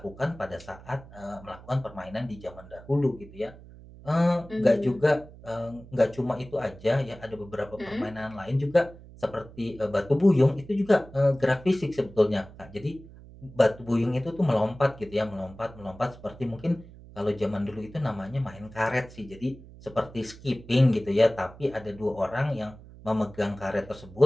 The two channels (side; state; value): right; noise; hum, 19 dB below the sound